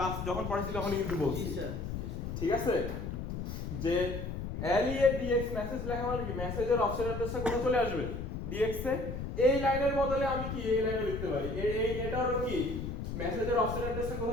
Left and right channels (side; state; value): left; noise; rumble, 5 dB below the sound